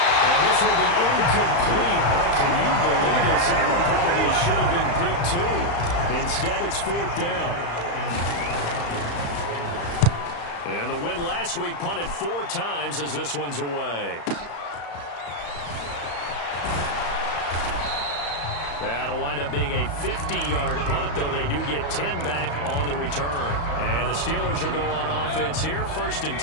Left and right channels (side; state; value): right; late; 35 ms